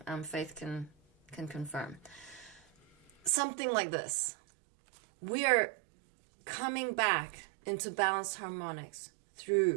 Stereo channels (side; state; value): left; drops out; at 3.3 s